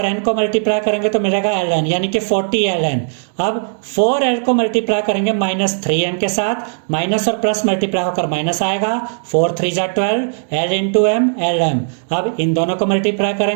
n को मल्टीप्लाई करेंगे तो मिलेगा ln, यानी कि 40ln। अब 4l को मल्टीप्लाई करेंगे माइनस 3m के साथ, माइनस और प्लस मल्टीप्लाई होकर माइनस आएगा। 4 3 जा 12, l इंटू m lm। अब इन दोनों को मल्टीप्लाई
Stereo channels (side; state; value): left; silent; digital silence